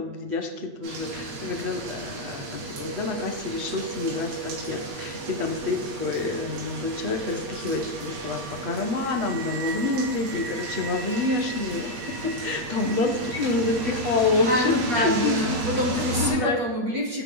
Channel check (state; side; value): late; left; 8.4 ms